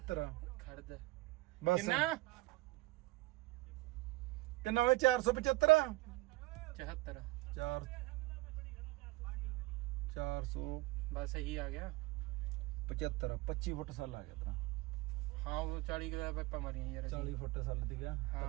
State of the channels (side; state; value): left; quieter; 20.3 dB